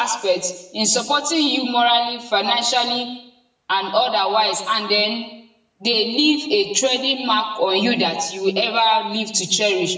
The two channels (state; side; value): identical; both; correlation 1.00